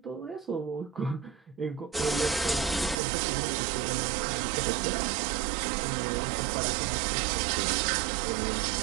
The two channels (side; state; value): left; drops out; at 3.0 s